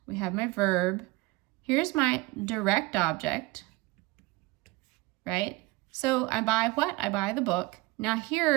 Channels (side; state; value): left; quieter; 22.9 dB